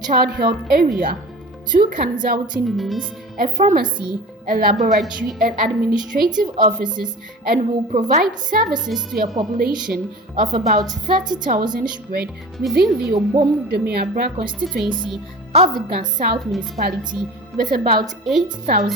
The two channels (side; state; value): both; normal; correlation 0.37